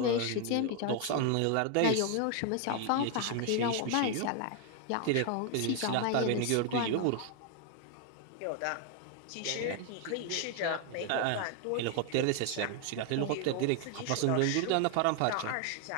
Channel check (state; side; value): different; both; correlation 0.00